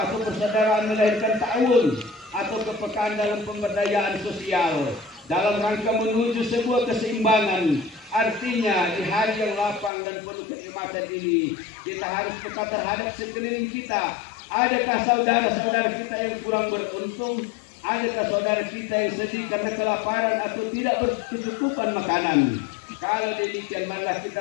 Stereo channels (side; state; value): right; drops out; at 9.9 s